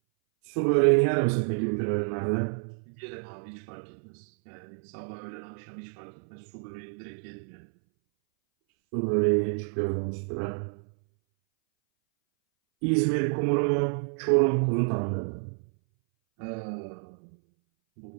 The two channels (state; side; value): silent; left; 59 dB below the other